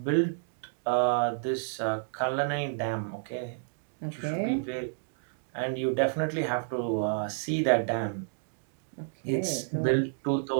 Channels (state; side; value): silent; left; digital silence